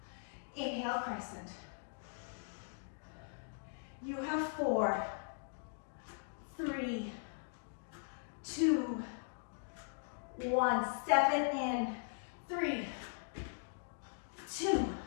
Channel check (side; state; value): right; silent; digital silence